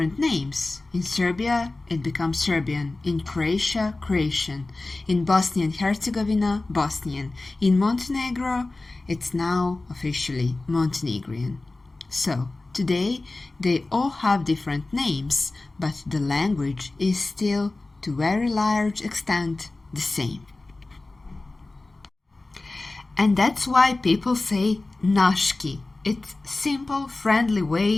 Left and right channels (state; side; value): quieter; right; 3.1 dB